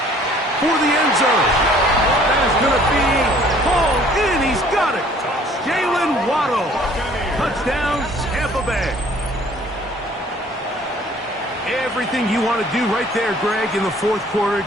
for the end zone. That is going to be hauled in. He's got it. Jalen Waddle. Touchdown, Tampa Bay. Everything you want to do right there, Greg, in the fourth quarter.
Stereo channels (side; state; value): both; normal; correlation 0.56